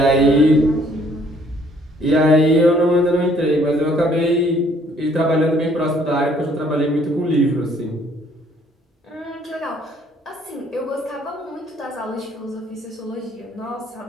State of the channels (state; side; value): normal; both; correlation 0.62